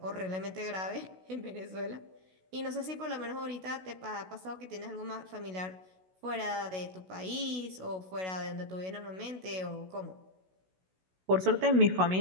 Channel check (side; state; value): left; late; 16 ms